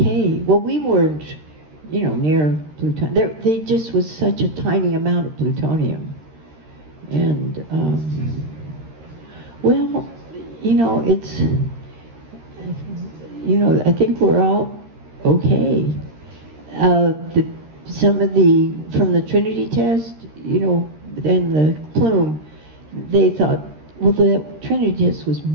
Well, we weren't, near plutonium. They just was such a tiny amount of plutonium. And, well, it's, I think we're all okay. Some of from the Trinity test, and the plume, they thought, well, the Trinity test was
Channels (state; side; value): late; left; 13 ms